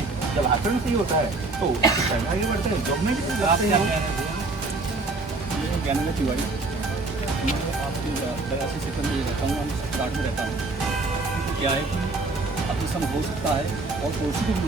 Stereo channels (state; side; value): quieter; left; 3.4 dB